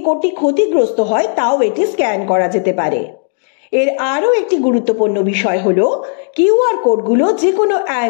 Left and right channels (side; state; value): right; silent; digital silence